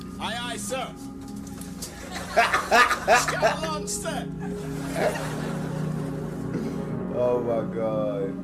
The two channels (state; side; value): identical; both; correlation 1.00